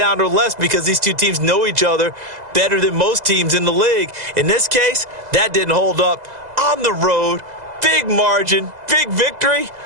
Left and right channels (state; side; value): late; left; 2.0 ms